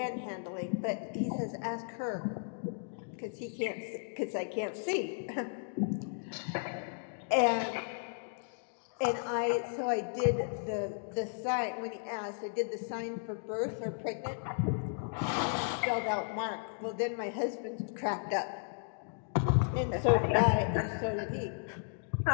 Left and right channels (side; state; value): right; silent; digital silence